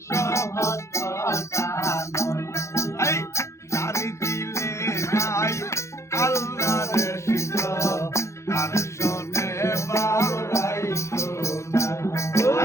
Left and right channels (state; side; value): late; right; 0.14 ms